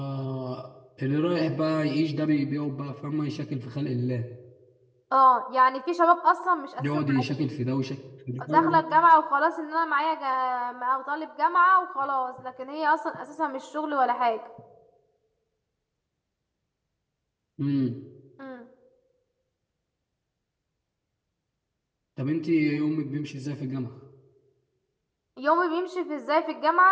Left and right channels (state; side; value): identical; both; correlation 1.00